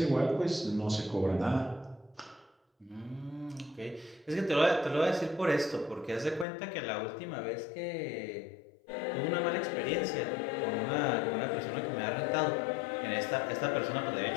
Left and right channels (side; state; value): right; drops out; at 6.5 s